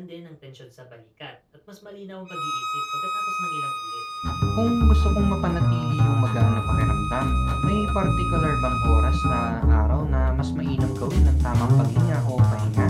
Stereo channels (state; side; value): identical; both; correlation 1.00